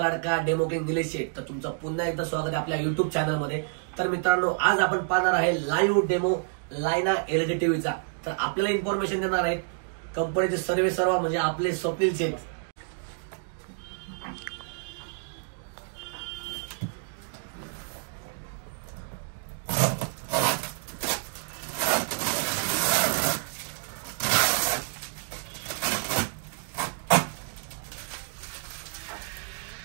लाडका डेमो किंग निलेश शेठ. तर तुमचं पुन्हा एकदा स्वागत आहे आपल्या युट्यूब चॅनल मध्ये. तर मित्रांनो, आज आपण पाहणार आहे लाईव्ह डेमो लायना एलईडी टीव्हीचा. तर आपल्याला इन्फॉर्मेशन देणार आहेत कंपनीचे सर्व म्हणजे आपले स्वप्नील शेठ.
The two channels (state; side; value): silent; left; digital silence